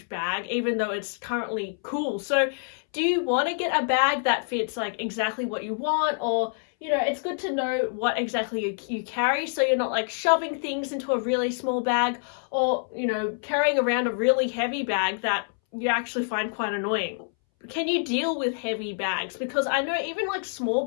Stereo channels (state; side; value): silent; right; 61 dB below the other